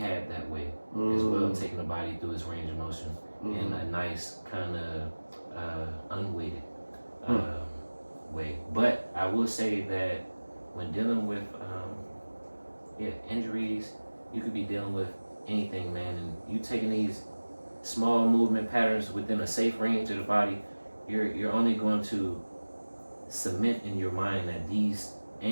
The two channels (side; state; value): both; inverted; correlation -1.00